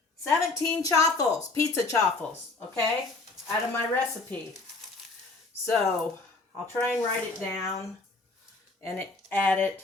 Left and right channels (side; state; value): right; quieter; 3.5 dB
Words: 17 chaffles, pizza chaffles, okay, out of my recipe. So I'll try and write it down and add